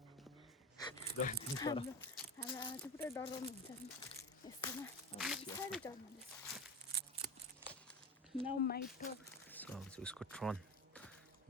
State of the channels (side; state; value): both; normal; correlation 0.26